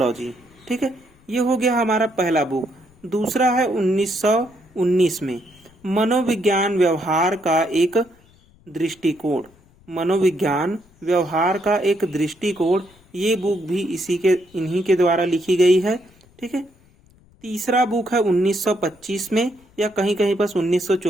ठीक है, ये हो गया हमारा पहला बुक। दूसरा है 1919 में मनोविज्ञान व्यवहार का एक दृष्टिकोण, मनोविज्ञान व्यवहार का एक दृष्टिकोण, ये बुक भी इन्हीं के द्वारा लिखी गई है। ठीक है, तीसरा बुक है 1925 में, या कहीं कहीं बस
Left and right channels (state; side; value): noise; left; rumble, 29 dB below the sound